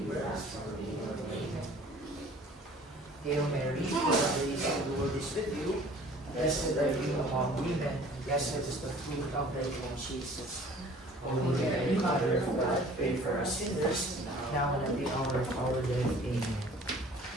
us from evil. Amen. Hail Mary, full of grace, the Lord is with you. Blessed are you among women, and blessed is the fruit of thy womb, Jesus. Holy Mary, Mother of God, pray for us sinners, now and at the hour of our death. Amen.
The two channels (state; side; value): normal; both; correlation 0.50